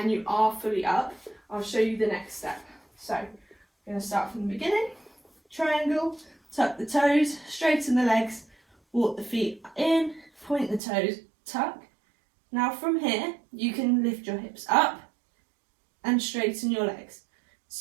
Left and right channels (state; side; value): drops out; left; at 10.8 s